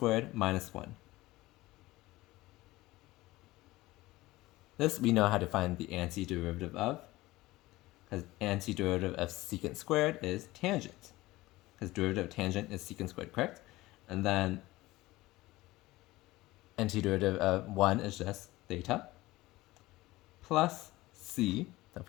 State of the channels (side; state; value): right; quieter; 18.8 dB